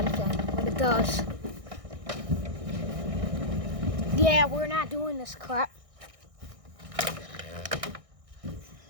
but it does. Yeah, we're not doing this crap.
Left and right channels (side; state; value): left; late; 1.6 ms